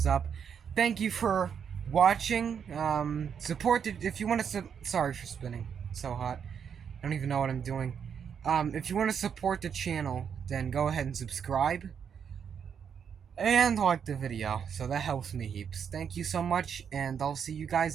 up. Thank you for watching. Support the, if you want to sorry for spinning. It's so hot. I don't even know what I'm doing. If you want to support the channel, then go ahead and subscribe and like the video. So that helps me heaps. Thank you so much, and I'll see you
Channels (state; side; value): quieter; left; 7.5 dB